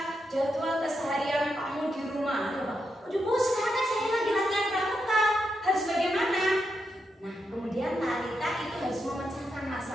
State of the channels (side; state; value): both; normal; correlation 0.84